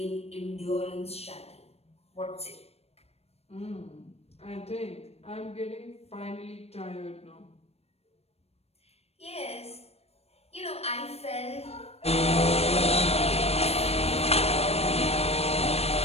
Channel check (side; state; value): right; late; 0.30 ms